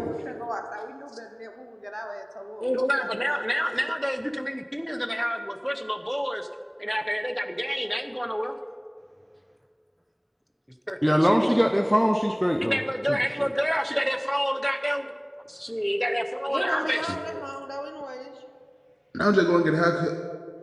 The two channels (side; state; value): both; identical; correlation 1.00